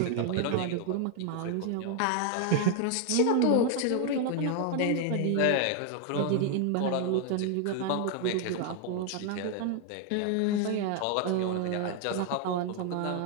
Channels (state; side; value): different; both; correlation 0.00